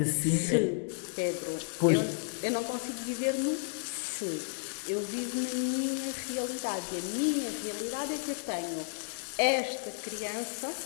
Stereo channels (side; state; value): right; silent; digital silence